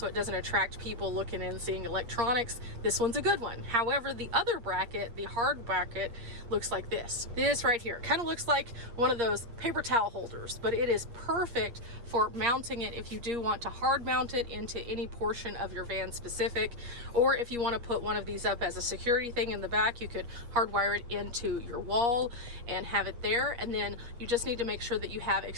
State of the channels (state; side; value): late; left; 8.5 ms